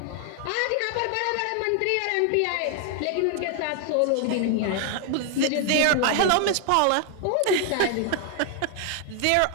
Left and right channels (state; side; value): different; both; correlation 0.00